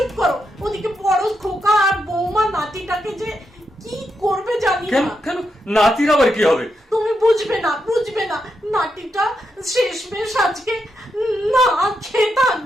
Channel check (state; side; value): normal; both; correlation 0.84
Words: করো, ওদিকে বড় খোকা আর বৌমা নাতিটাকে যে কি করবে জানি না। কেন নাতির আবার কি হবে? তুমি বুঝবে না, নাতিটা শেষমেশ আজকে না খেয়ে